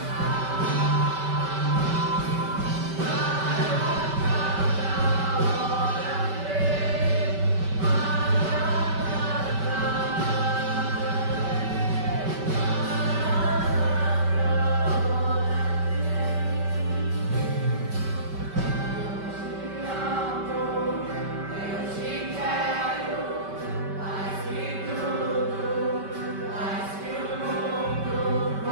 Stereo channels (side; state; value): left; late; 5.2 ms